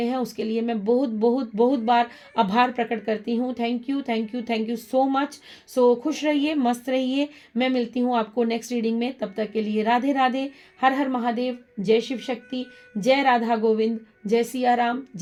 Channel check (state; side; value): identical; both; correlation 1.00